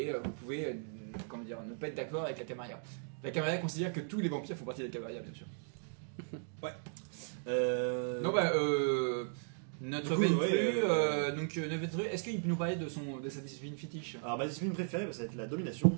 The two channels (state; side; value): silent; left; digital silence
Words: vous pouvez comment dire, ne pas être d'accord avec la Camarilla. La Camarilla considère que tous les vampires font partie de la Camarilla, bien sûr. Non, bah, Notre Du coup, Ventru, ouais, notre Ventru, est-ce qu'il peut nous parler de sa discipline fétiche? Alors ma discipline préférée, ça va être la domination.